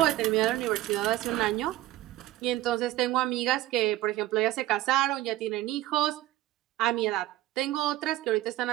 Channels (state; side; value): quieter; left; 15.6 dB